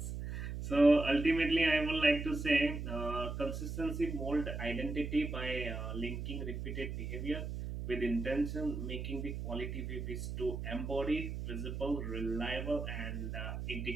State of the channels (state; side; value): noise; right; hum, 5 dB below the sound